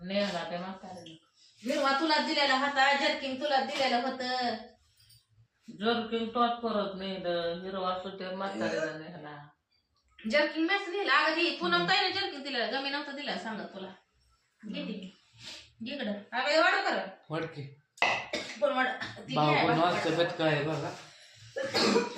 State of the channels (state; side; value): identical; both; correlation 1.00